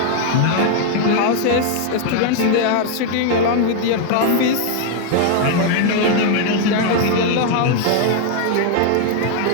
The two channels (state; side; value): different; both; correlation 0.00